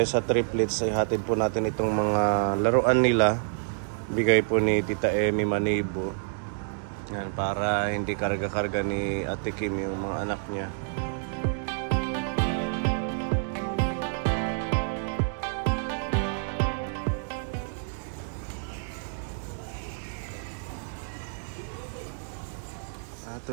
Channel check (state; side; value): silent; left; digital silence